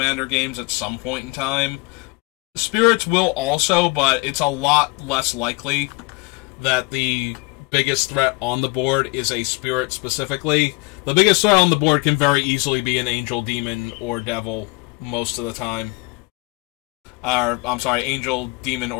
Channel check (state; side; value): quieter; right; 26.8 dB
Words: games at some point in time. Spirits will also, but it's a lot less likely that the biggest threat on the board is a spirit specifically. The biggest threat on the board can very easily be an angel, demon, or devil most of the time. I'm sorry, angel, demon,